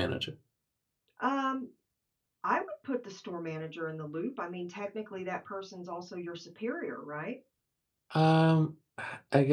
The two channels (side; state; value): both; identical; correlation 1.00